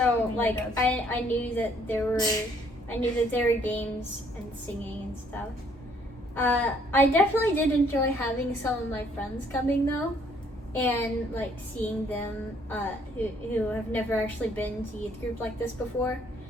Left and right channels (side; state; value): both; normal; correlation 0.65